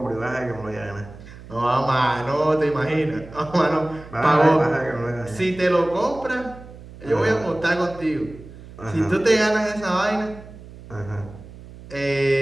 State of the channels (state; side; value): noise; right; hum, 17 dB below the sound